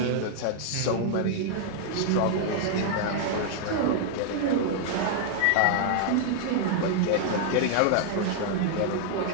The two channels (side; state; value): both; different; correlation -0.01